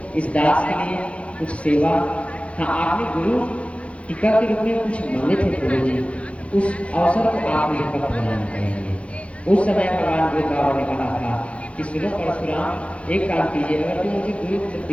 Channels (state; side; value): late; right; 0.062 ms